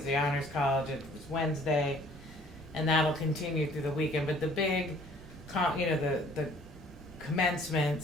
The Honors College, it was Wednesday, and that'll continue through the weekend. But the big, the commencement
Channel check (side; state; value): both; normal; correlation 0.56